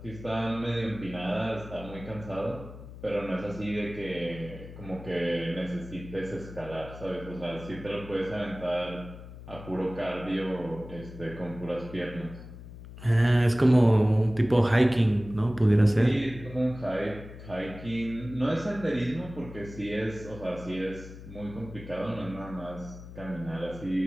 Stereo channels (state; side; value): noise; left; hum, 14 dB below the sound